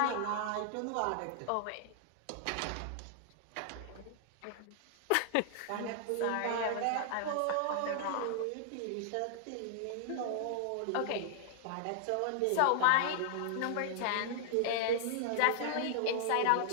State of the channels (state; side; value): different; both; correlation -0.01